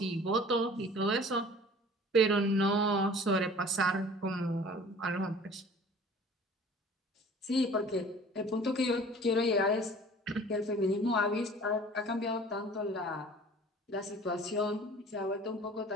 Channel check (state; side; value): normal; both; correlation 0.47